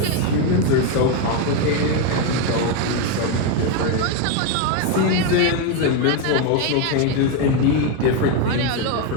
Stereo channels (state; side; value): different; both; correlation 0.02